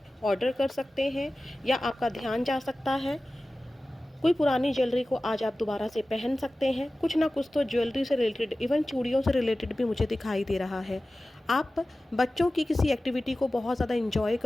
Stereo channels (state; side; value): normal; both; correlation 0.96